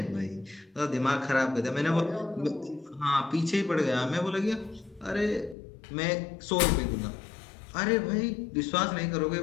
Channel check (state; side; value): drops out; right; at 5.6 s